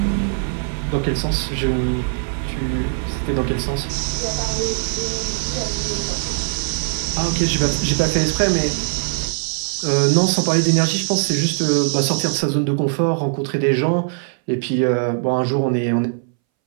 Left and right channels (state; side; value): silent; left; 63 dB below the other